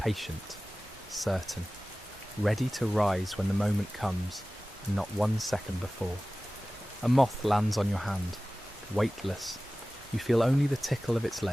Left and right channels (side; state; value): both; normal; correlation 0.97